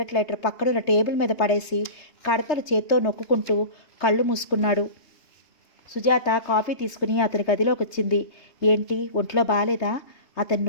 లైటర్ పక్కనున్న టేబుల్ మీద పడేసి కడతలు చేత్తో నొక్కుంటూ కళ్ళు మూసుకున్నాడు. సుజాత కాఫీ తీసుకుని అతని గదిలోకి వచ్చింది. ఏంటి, ఒంట్లో బాలేదా? అతని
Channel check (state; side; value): late; right; 3.3 ms